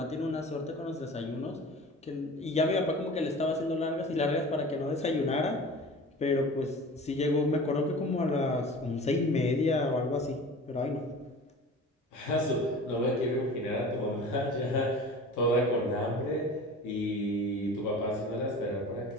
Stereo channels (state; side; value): normal; both; correlation 0.39